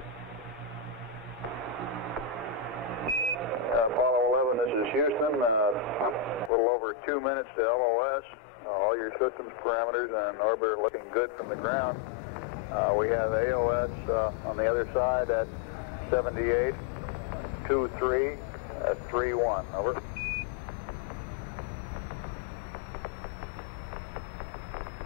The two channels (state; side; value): drops out; right; at 6.5 s